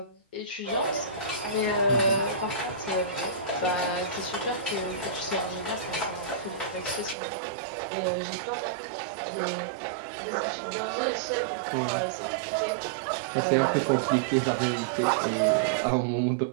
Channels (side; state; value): left; drops out; at 7.2 s